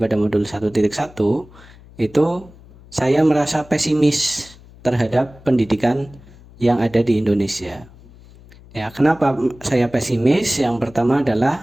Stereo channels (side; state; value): left; noise; hum, 23 dB below the sound